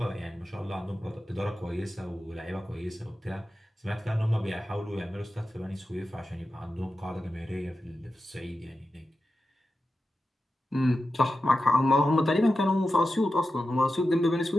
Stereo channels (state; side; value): normal; both; correlation 0.91